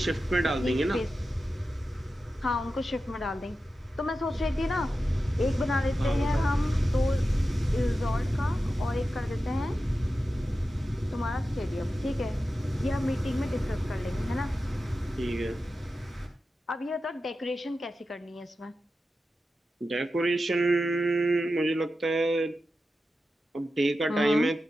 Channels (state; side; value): normal; both; correlation 0.92